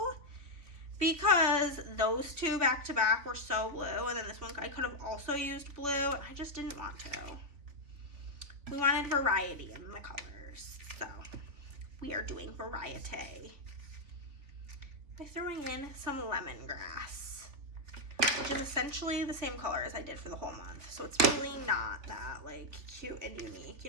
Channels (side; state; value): left; late; 3.4 ms